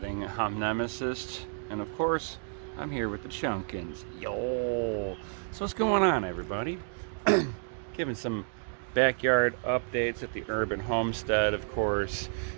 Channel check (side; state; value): left; silent; digital silence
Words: I'm Nemesis, and of course, I'm here with the Chunkins. Yo! So what's going on, everybody? Giving some backyard updates at the urban homestead, of course.